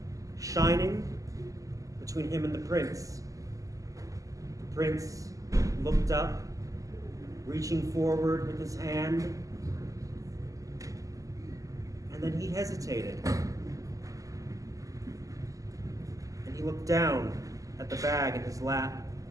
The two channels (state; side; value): late; left; 0.16 ms